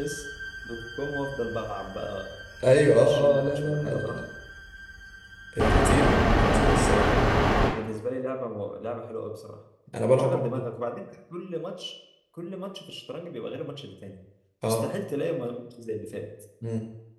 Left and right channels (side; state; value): both; identical; correlation 1.00